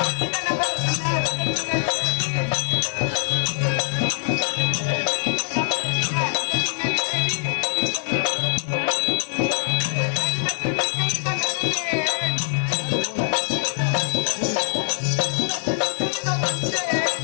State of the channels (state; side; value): silent; right; digital silence